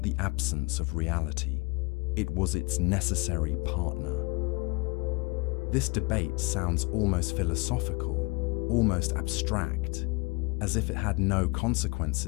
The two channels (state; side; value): quieter; right; 28.1 dB